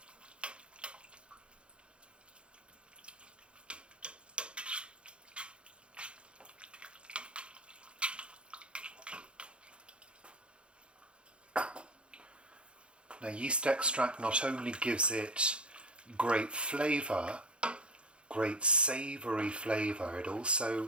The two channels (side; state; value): left; late; 0.057 ms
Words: Now, yeast extract not only gives it great flavour, great savoury flavour, it